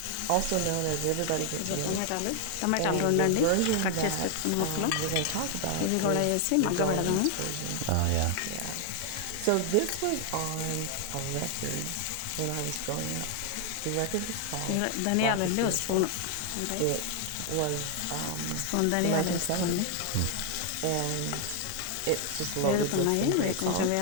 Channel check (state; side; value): different; both; correlation 0.00